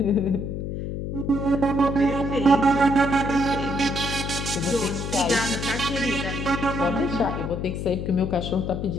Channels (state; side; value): noise; left; hum, 4 dB below the sound